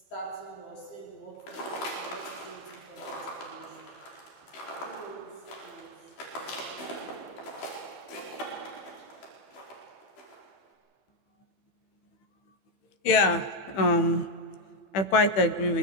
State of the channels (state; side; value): late; right; 15 ms